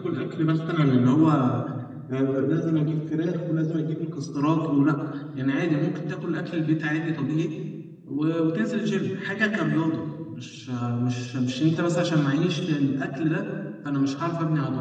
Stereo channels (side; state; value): both; identical; correlation 1.00